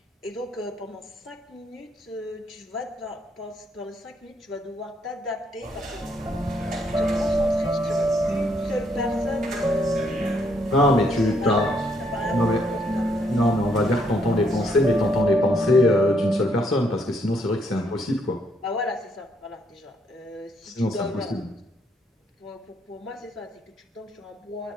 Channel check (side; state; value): both; normal; correlation 0.71